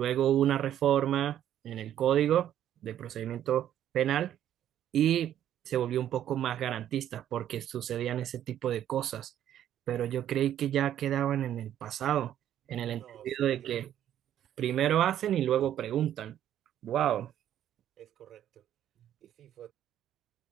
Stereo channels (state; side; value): quieter; left; 11.1 dB